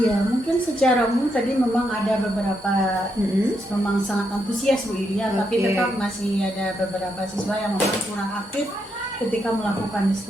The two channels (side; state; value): both; normal; correlation 0.80